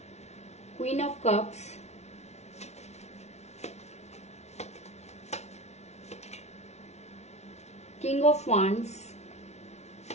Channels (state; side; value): late; right; 0.32 ms